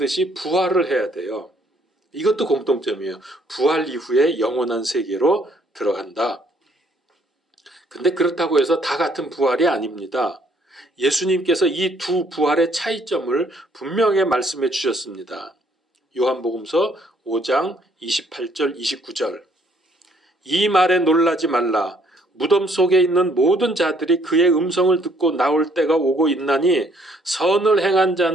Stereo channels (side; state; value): both; normal; correlation 0.65